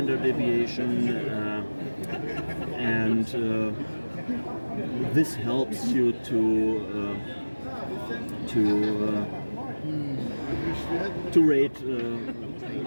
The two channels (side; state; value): both; inverted; correlation -1.00